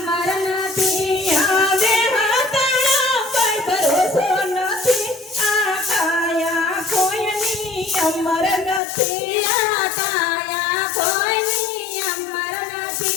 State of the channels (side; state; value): right; drops out; at 8.8 s